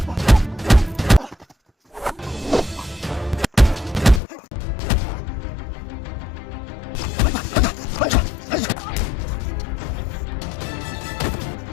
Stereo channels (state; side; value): drops out; right; at 4.2 s